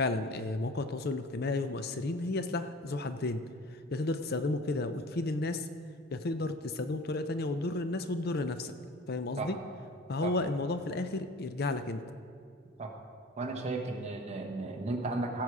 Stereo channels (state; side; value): normal; both; correlation 0.42